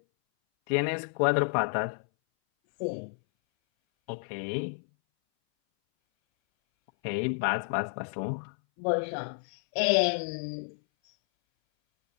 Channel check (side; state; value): right; silent; 58 dB below the other